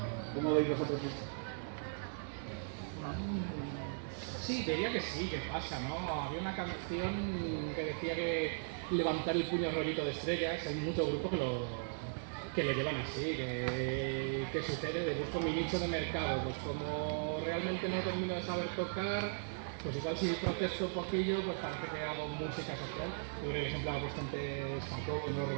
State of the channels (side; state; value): left; silent; digital silence